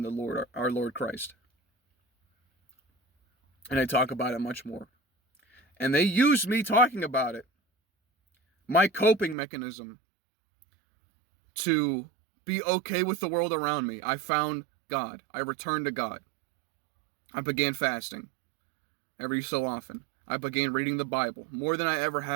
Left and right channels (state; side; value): drops out; left; at 9.3 s